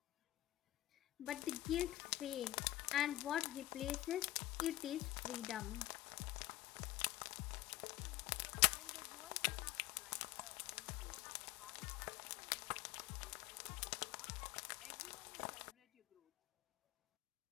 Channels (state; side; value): quieter; right; 15.7 dB